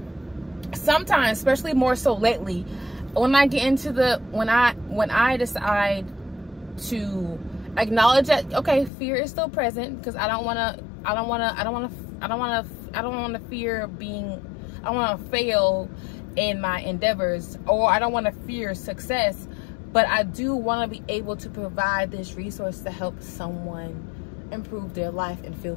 especially more so lately, when I get into when I decide to acknowledge that, okay, fear is still present, because I don't want to fail in my endeavors, or I don't want to fear success, but I do want to be able to provide this resource to help someone improve their life and feel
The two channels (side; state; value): right; drops out; at 8.9 s